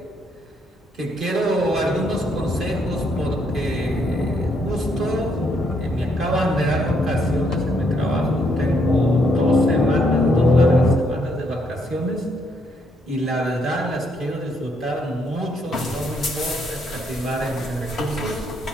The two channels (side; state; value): both; normal; correlation 0.73